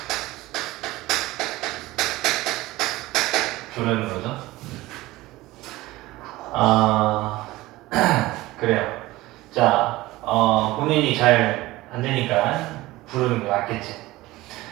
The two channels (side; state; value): left; quieter; 18.6 dB